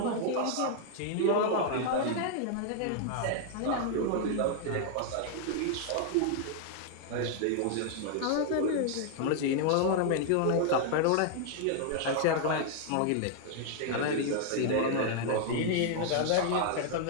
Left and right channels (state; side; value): different; both; correlation 0.00